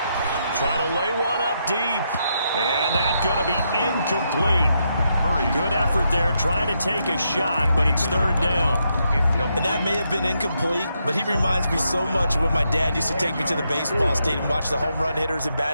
Trying to lay one up deep. And that's going to be incomplete. Good effort there, trying to take a shot, but it's third down. And that may have been incomplete, but he reminds me so much of when my dad used to take me to the baseball stadium and watch the home run hitters in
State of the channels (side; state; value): both; inverted; correlation -0.80